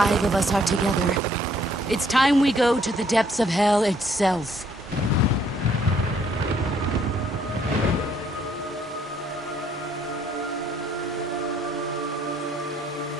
of us are together, it's time we go to the depths of hell itself.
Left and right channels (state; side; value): normal; both; correlation 0.65